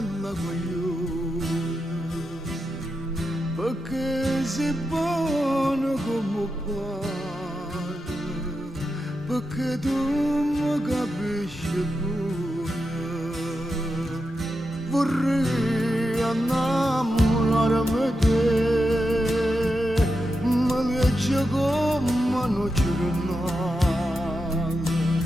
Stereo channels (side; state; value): both; normal; correlation 0.87